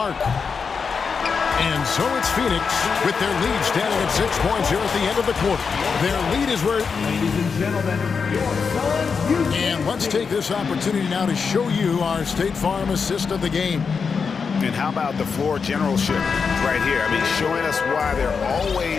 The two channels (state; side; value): quieter; right; 5.6 dB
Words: And so it's Phoenix with their lead standing at 6 points here at the end of the quarter. Their lead is where... Ladies and gentlemen, your sons, And let's take this opportunity now to show you our State Farm assist of the game. And how about the floor generalship right here? I mean, showing us why they're